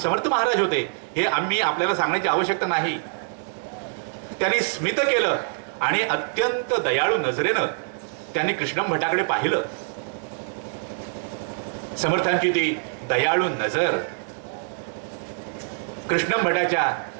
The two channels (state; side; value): silent; left; 62 dB below the other